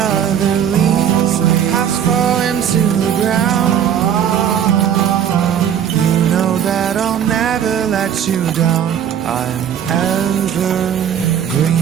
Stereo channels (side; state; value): left; quieter; 9.0 dB